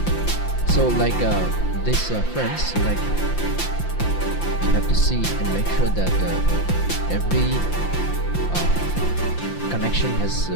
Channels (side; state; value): right; late; 5.8 ms